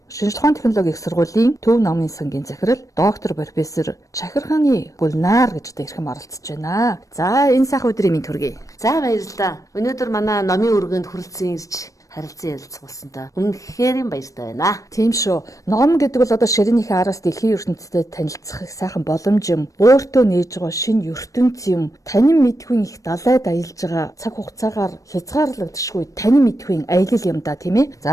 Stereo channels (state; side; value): late; right; 0.16 ms